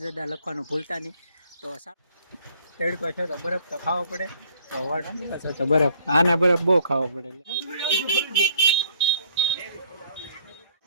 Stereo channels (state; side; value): inverted; both; correlation -0.61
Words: દદા લખવાનું ભૂલતા નહીં. તો તડકો છે તો બરફ તો ખાવો પડે, તો બરફ આને બરફ બહુ ખાવો પડે.